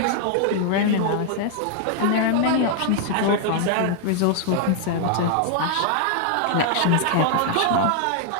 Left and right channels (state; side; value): different; both; correlation 0.00